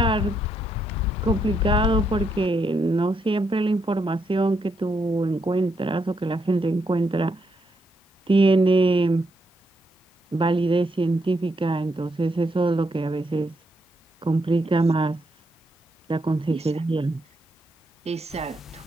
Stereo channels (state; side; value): normal; both; correlation 0.78